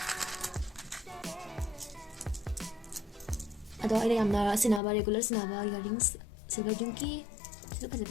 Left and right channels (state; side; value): drops out; right; at 4.8 s